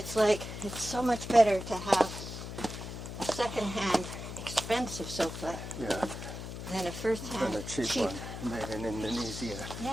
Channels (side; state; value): left; noise; hum, 8 dB below the sound